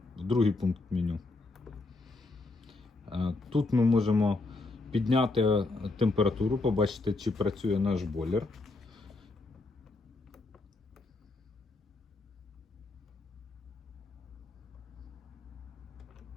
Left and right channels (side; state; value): right; quieter; 3.3 dB